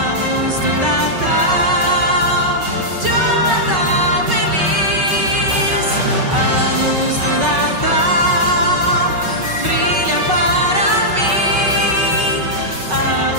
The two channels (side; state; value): left; late; 5.3 ms